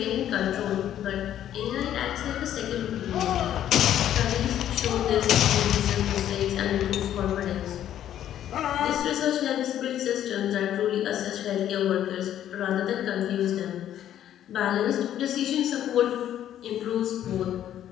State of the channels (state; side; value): quieter; right; 11.2 dB